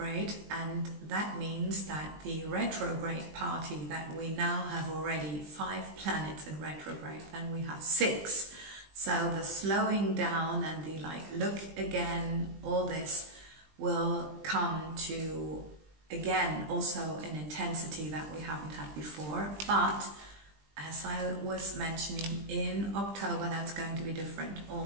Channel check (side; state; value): left; late; 20 ms